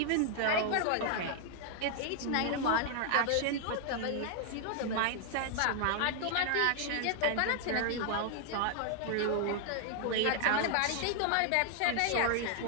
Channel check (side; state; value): both; different; correlation 0.00